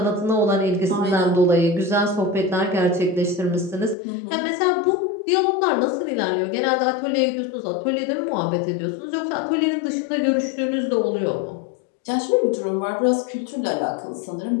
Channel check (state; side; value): drops out; right; at 4.0 s